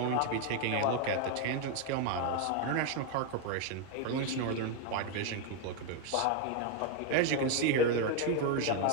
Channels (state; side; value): different; both; correlation 0.01